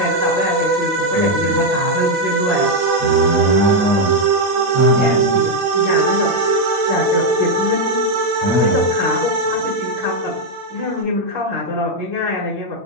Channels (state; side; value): late; left; 8.7 ms